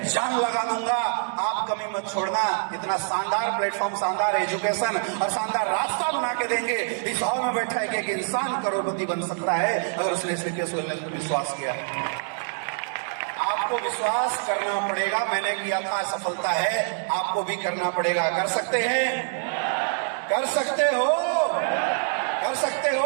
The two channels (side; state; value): left; silent; 61 dB below the other